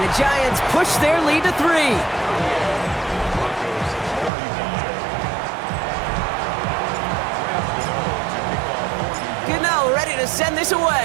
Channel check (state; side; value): drops out; left; at 4.3 s